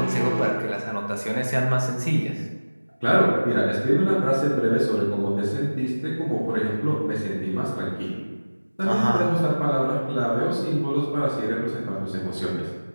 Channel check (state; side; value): inverted; both; correlation -1.00